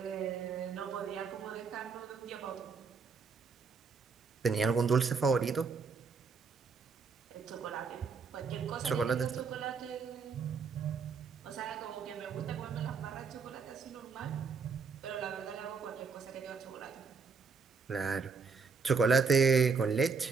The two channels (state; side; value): quieter; left; 5.2 dB